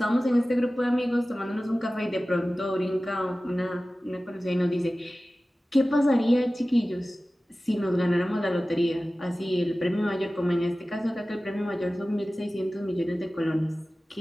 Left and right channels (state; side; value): normal; both; correlation 0.96